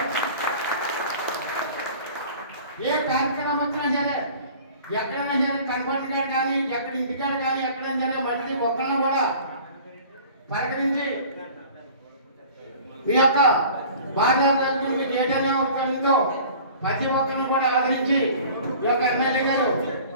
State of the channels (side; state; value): both; inverted; correlation -0.45